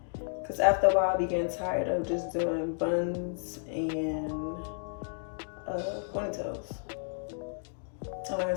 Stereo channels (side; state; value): right; silent; digital silence